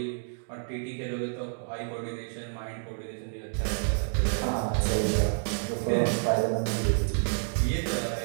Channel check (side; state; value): left; silent; digital silence